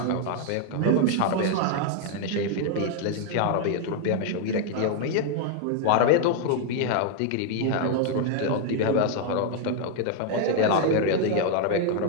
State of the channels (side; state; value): both; different; correlation 0.00